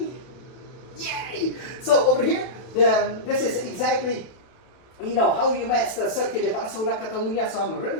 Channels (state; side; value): late; right; 32 ms